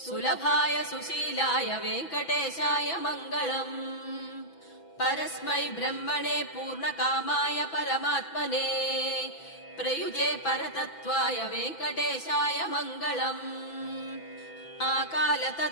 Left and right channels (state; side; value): late; right; 6.0 ms